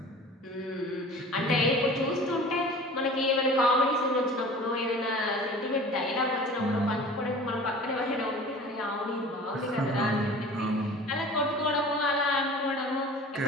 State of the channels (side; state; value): both; normal; correlation 0.42